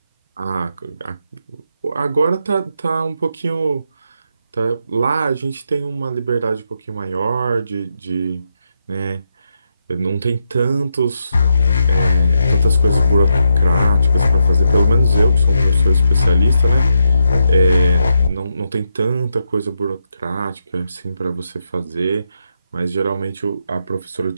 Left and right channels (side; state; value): both; inverted; correlation -0.82